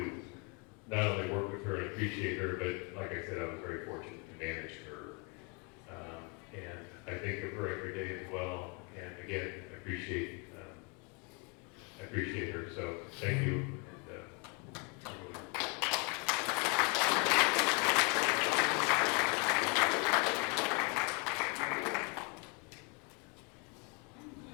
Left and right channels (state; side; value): quieter; right; 32.5 dB